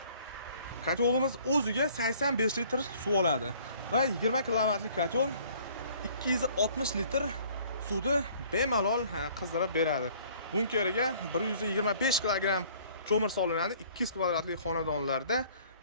Kotolimiz o'ziga 85 litr suv oladi va 20 kilovatlik kotol 260 litr suvni bemalol qizdirib beradi. Bunkeriga 125 kilogramm ko'mir solinadi. 200 kvadratli xonadonlarda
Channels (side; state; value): both; inverted; correlation -0.56